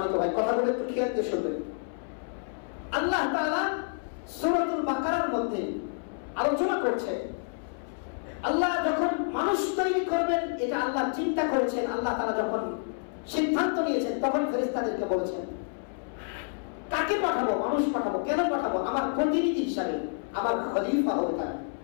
ভাই, কথাগুলো একটু খেয়াল দিয়ে শুনবেন। আল্লাহ তাআলা সূরাতুল বাকারার মধ্যে আলোচনা করছে, আল্লাহ যখন মানুষ তৈরি করবেন এটা আল্লাহ চিন্তা করেছেন। আল্লাহ তাআলা যখন সিদ্ধান্ত নিয়েছেন তখন ফেরেশতাদেরকে বলেছেন, কাকে পাঠাবো? মানুষ পাঠাবো। কেন পাঠাবো? আমার প্রতিনিধি হিসাবে, আমার খলিফা হবে তারা,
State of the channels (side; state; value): right; silent; 59 dB below the other